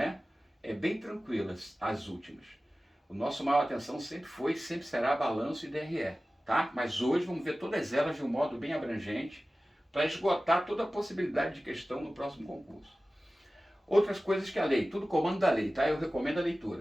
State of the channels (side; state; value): both; normal; correlation 0.96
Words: É bem tranquilas as últimas. O nosso maior atenção sempre foi e sempre será balanço e DRE, tá? Mas hoje vamos ver todas elas de um modo bem abrangente para esgotar toda a possibilidade de questão no próximo concurso. Outras coisas que a lei, tudo comando da lei, tá? Eu recomendo a